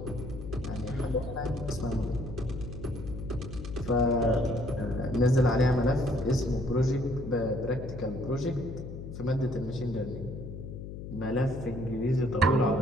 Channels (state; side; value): noise; left; hum, 9 dB below the sound